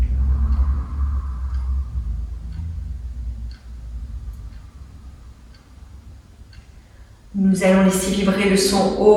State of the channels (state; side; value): identical; both; correlation 1.00